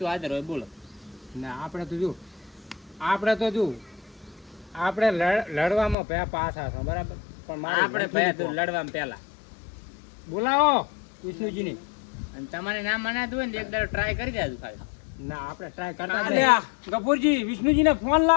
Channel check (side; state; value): right; drops out; at 6.0 s